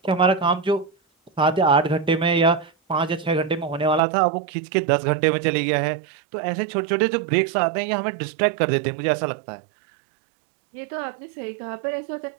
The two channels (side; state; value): left; drops out; at 4.0 s